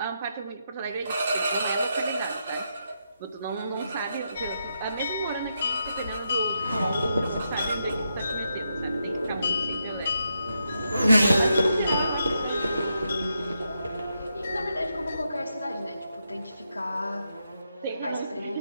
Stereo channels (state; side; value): inverted; both; correlation -0.83